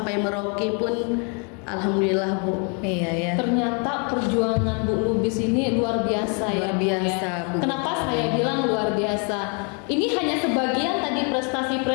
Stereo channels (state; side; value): quieter; right; 37.1 dB